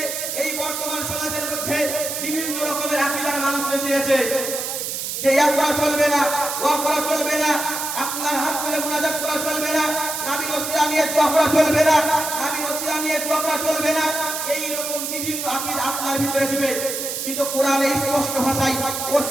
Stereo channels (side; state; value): right; noise; hiss, 4 dB below the sound